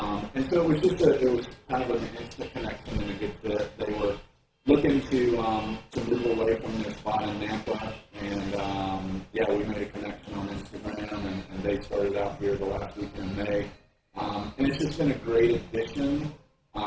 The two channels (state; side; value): identical; both; correlation 1.00